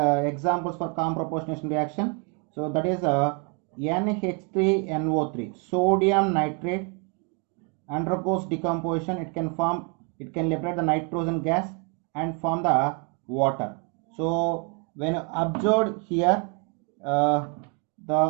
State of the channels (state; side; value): quieter; left; 35.8 dB